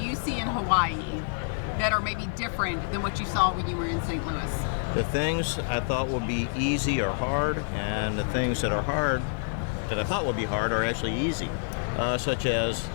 you see in Hawaii that are maybe different than what you saw when you were in St. Louis? The things I thought would be easy are hard, and the things that are hard, that I thought would be hard, are actually easy, such as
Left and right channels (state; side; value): silent; right; digital silence